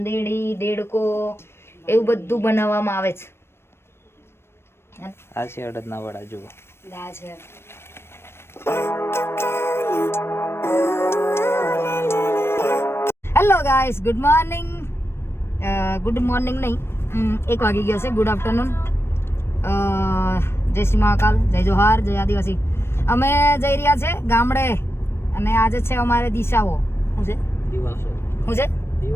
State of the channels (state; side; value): late; right; 0.12 ms